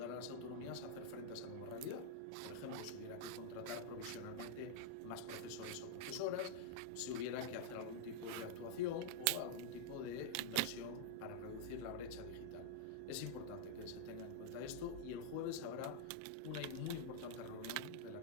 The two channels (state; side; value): different; both; correlation -0.02